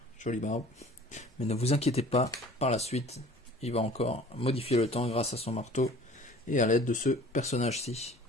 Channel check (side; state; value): both; normal; correlation 0.48